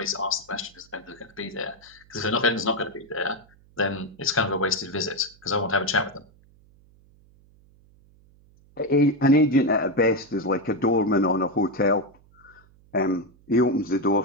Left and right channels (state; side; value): noise; right; hum, 29 dB below the sound